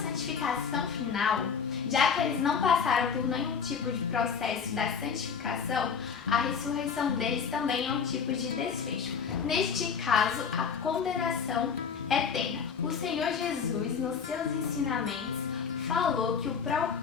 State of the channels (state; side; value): quieter; right; 6.4 dB